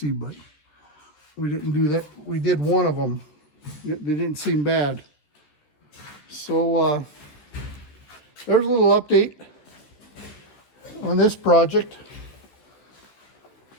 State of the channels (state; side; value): late; right; 13 ms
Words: but we didn't do that. We did one of them. They didn't seem bad. So there's a little update on this project.